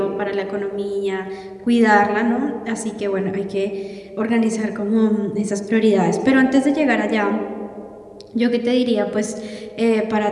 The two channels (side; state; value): both; identical; correlation 1.00